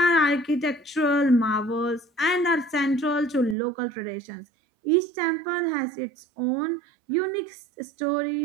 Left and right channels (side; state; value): left; drops out; at 3.6 s